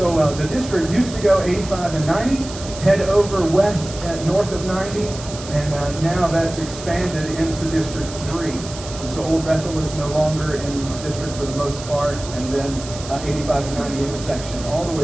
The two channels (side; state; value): right; noise; hiss, 13 dB below the sound